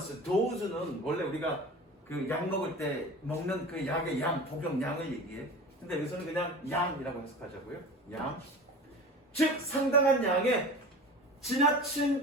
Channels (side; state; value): both; normal; correlation 0.35